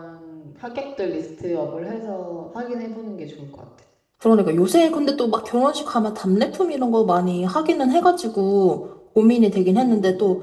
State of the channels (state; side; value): identical; both; correlation 1.00